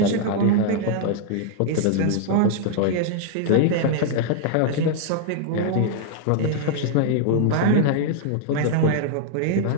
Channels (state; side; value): different; both; correlation 0.00